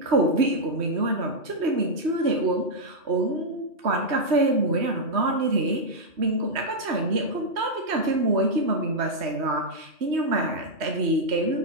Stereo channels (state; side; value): late; left; 3.1 ms